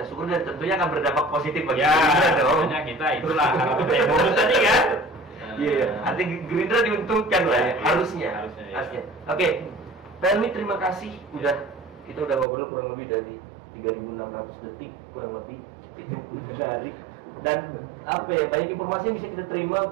syukur dan tentunya akan berdampak positif bagi Gerindra dong. Kita itulah bonus tadi kan. Iya, artinya Gerindra diuntungkan lah ya, harusnya. Oke, Pelmi terima kasih kita udah ngobrol kurang lebih dari 3.600 detik kurang lebih, itu menarik dan banyak informasi yang bisa kita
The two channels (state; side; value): drops out; left; at 12.5 s